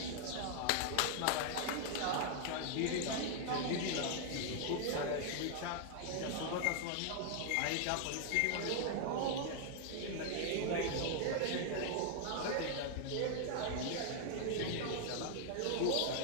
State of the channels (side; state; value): both; different; correlation 0.00